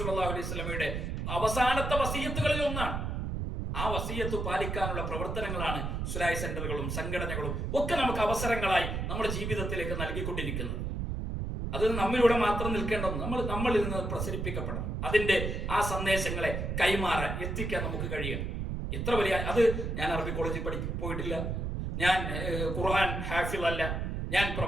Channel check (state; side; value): noise; right; rumble, 3 dB below the sound